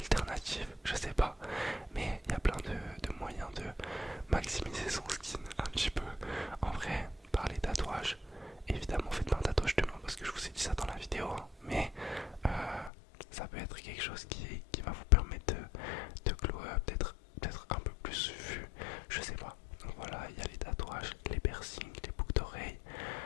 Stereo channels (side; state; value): right; drops out; at 12.9 s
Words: je sais pas, mais il y a plein de moyens de maximiser son skin un petit peu. En vrai, par les tatouages, évidemment faites pas un tatouage demain parce que je vous ai dit ça dans la vidéo, hein, mais ça peut être quelque chose qui va vous permettre de glow up, d'être un peu plus vu, je sais pas. Donc voilà, il y a les tatouages, les piercings, les boucles d'oreilles.